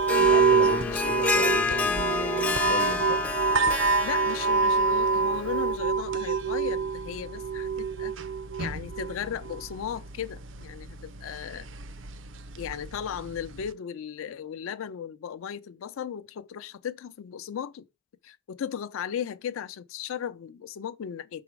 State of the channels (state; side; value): normal; both; correlation 0.02